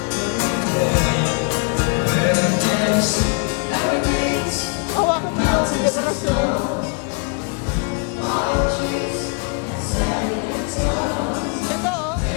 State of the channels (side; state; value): right; quieter; 36.3 dB